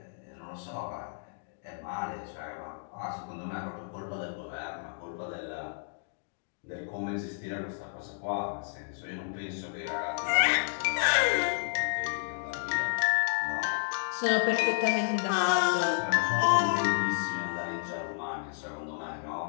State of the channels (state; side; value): silent; right; digital silence